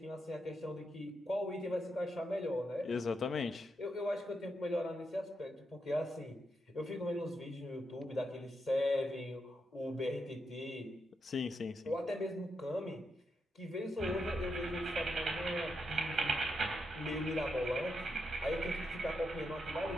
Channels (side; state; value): both; normal; correlation 0.83